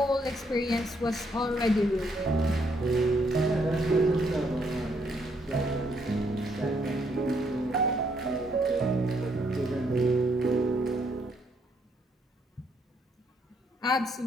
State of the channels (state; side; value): normal; both; correlation 0.72